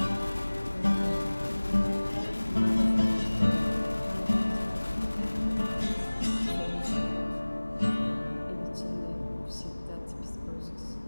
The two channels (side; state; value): both; inverted; correlation -1.00